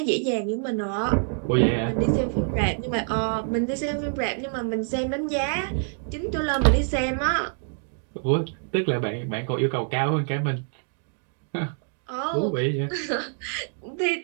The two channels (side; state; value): left; silent; 55 dB below the other